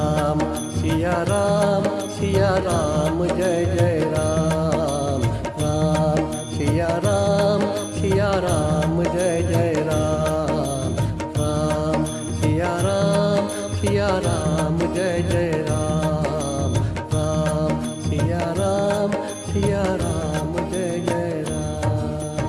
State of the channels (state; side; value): identical; both; correlation 1.00